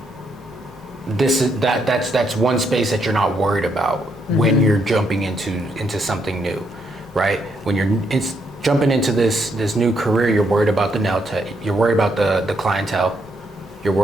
That's one space that you're not worried about when you're jumping into something new, right? When you're jumping into this new career, you're worried about the nail tech. You're worried about the clientele. You're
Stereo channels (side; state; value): both; normal; correlation 0.76